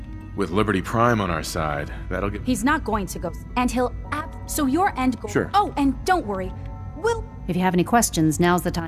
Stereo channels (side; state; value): both; identical; correlation 1.00